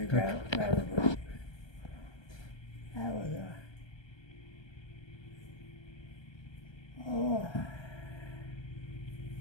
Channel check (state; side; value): late; right; 1.2 ms